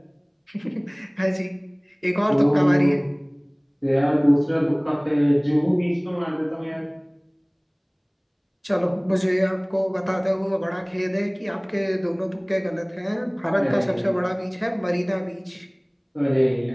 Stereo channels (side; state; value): both; identical; correlation 1.00